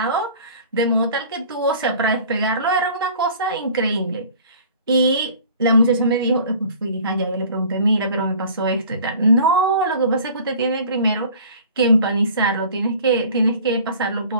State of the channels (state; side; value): inverted; both; correlation -0.47